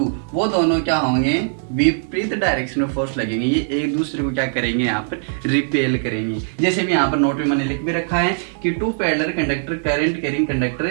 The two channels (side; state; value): left; silent; digital silence